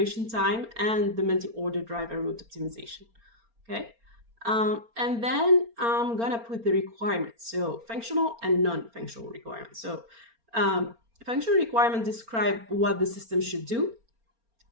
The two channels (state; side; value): late; left; 4.3 ms